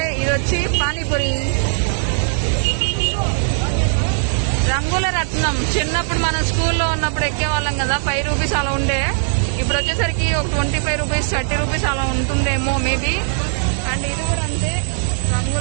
ఇది వచ్చి పానీపూరి. రంగుల రత్నం, చిన్నప్పుడు మనం స్కూల్లో ఉన్నప్పుడు ఎక్కేవాళ్ళం కదా, 5 రూపీస్ అలా ఉండే. ఇప్పుడు వచ్చేసరికి ఒక 25 రూపీస్, 30 రూపీస్ అలా ఉంటుందేమో మేబీ. అండ్ ఇది కూడా అంతే,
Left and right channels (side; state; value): left; silent; digital silence